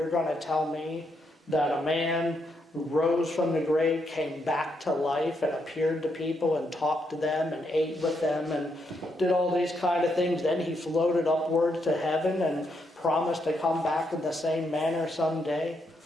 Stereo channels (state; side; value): normal; both; correlation 0.79